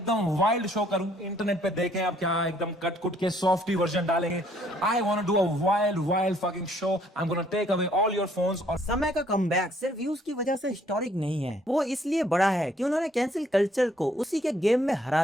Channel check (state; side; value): normal; both; correlation 0.64